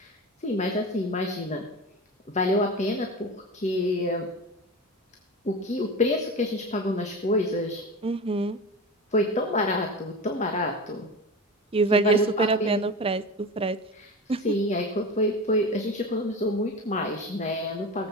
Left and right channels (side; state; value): both; normal; correlation 0.28